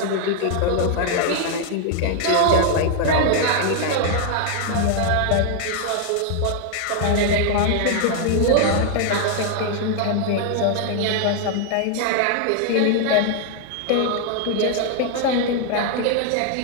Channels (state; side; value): different; both; correlation 0.00